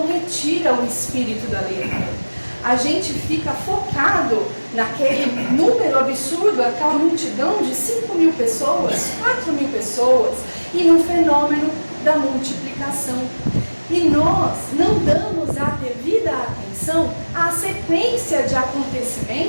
retira o espírito da letra. A gente fica focado naquele número absurdo, aquela multidão de 5.000 pessoas, 4.000 pessoas, e no fenômeno da multiplicação. E nós não damos a devida atenção à sequência de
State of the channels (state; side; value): inverted; both; correlation -1.00